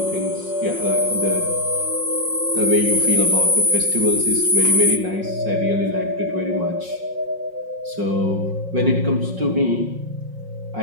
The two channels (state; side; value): late; left; 5.5 ms